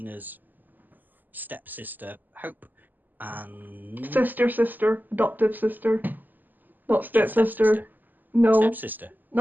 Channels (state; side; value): late; left; 0.086 ms